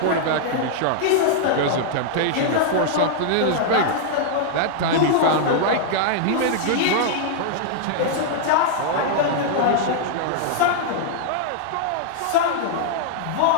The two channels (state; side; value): different; both; correlation -0.01